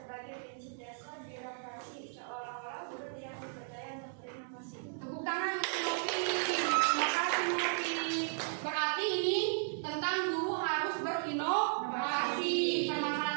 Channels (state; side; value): silent; left; 54 dB below the other